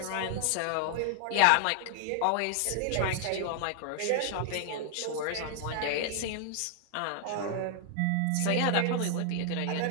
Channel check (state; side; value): different; both; correlation 0.00